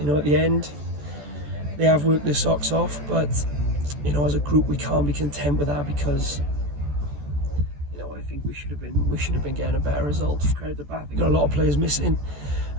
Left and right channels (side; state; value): left; late; 14 ms